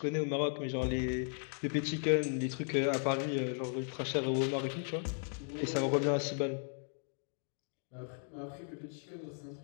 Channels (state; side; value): silent; right; 54 dB below the other